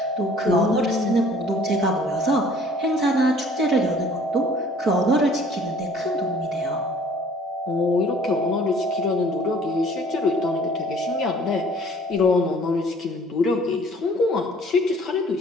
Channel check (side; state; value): both; normal; correlation 0.54